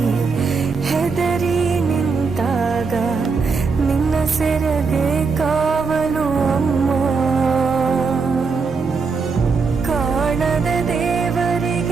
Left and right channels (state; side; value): quieter; left; 4.8 dB